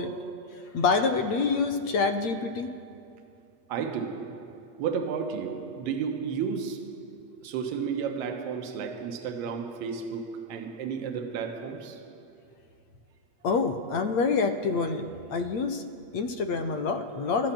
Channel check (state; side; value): late; right; 8.6 ms